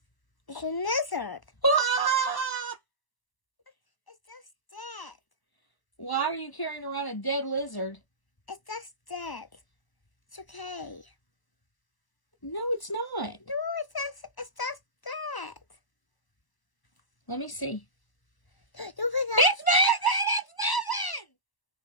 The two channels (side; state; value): right; late; 1.0 ms